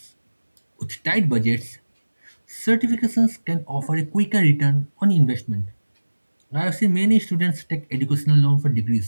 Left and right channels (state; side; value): inverted; both; correlation -1.00